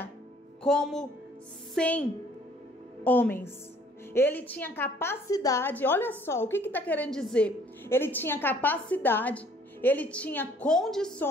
como 100 homens. Ele tinha capacidade, olha só, o que está querendo dizer? Ele tinha capacidade, ele tinha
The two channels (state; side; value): normal; both; correlation 0.59